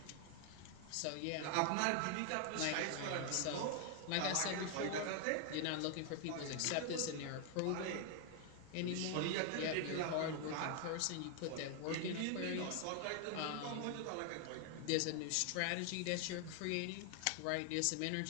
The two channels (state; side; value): different; both; correlation 0.00